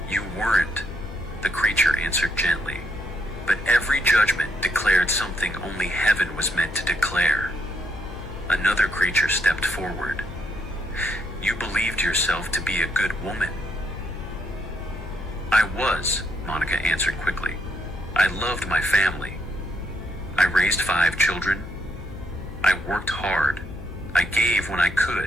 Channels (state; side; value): noise; left; hum, 12 dB below the sound